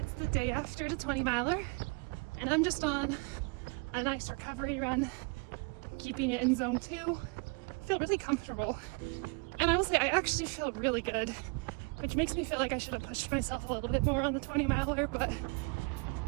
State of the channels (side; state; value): left; quieter; 30.1 dB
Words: the day after the 20 miler, and I'm just on a nice recovery run, keeping it in zone 2. I feel really comfortable, and I will say I actually feel really good, which makes me feel like I should have pushed myself a little bit more on the 20 miler, but